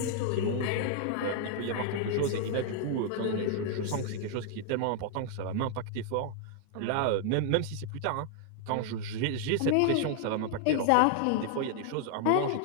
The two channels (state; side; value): different; both; correlation 0.00